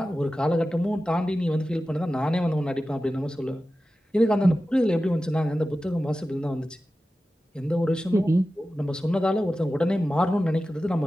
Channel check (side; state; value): both; normal; correlation 0.94